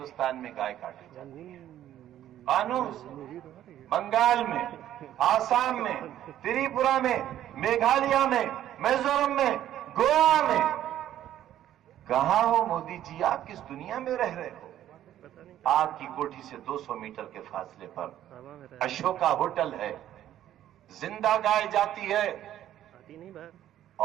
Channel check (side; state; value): left; quieter; 12.0 dB